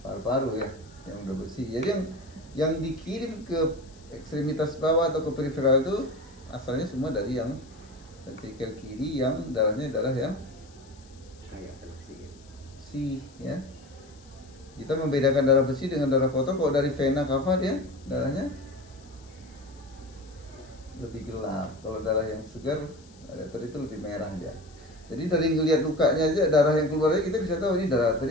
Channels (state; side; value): noise; left; hiss, 27 dB below the sound